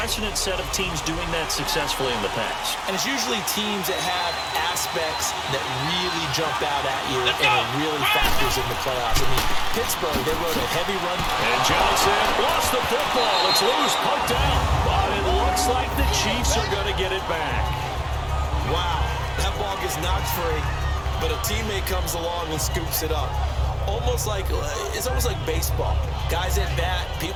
set of teams doing that successfully in the past. And it's usually teams that have aspects that really jump out at you and it really factors in the playoffs. I mean, Pittsburgh, they rode a heavy run. And Johnson lost the football. It's loose, poked out. But it looks like the Chiefs are going to get it back. Wow, that ball gets knocked free, but a teammate comes along and scoops it up. It's almost like baseball. Guys at bat,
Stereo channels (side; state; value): both; identical; correlation 1.00